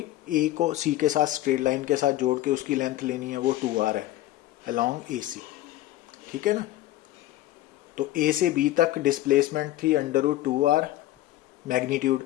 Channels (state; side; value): quieter; right; 15.1 dB